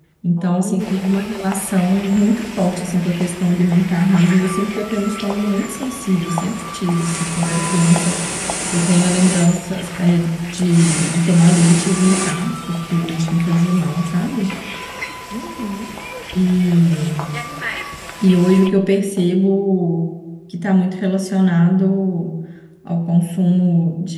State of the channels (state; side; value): identical; both; correlation 1.00